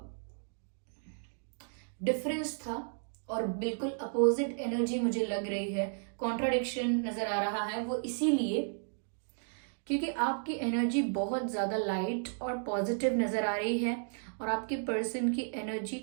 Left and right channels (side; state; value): left; silent; digital silence